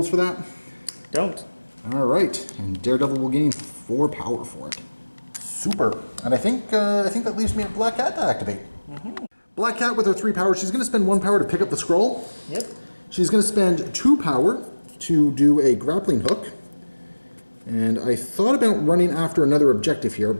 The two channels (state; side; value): inverted; both; correlation -1.00